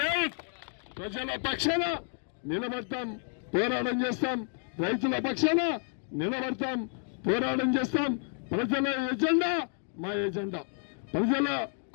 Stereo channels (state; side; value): silent; right; 56 dB below the other